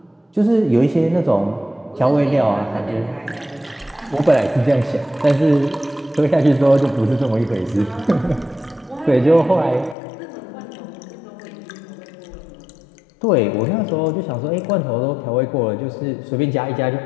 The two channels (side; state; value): right; drops out; at 10.0 s